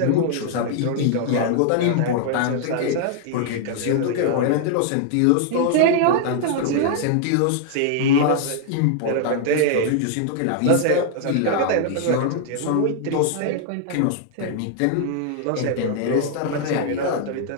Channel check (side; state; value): both; different; correlation 0.00